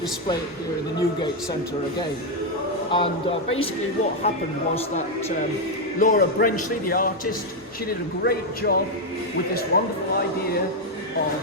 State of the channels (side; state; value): both; normal; correlation 0.02